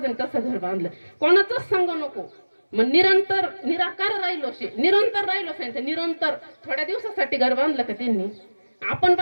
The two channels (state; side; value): inverted; both; correlation -1.00